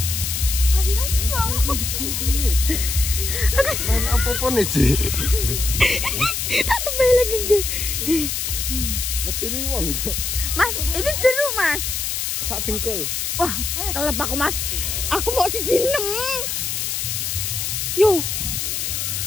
Ayo. Main apa-apa nih, Ci? Tak tebel lagi enggak. Metini wong. Mas, ini jeruk, Mas. Sak dengkul. Wah, kelep aku, Mas. Aku mau siji 6. Yo.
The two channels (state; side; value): noise; left; hiss, 2 dB below the sound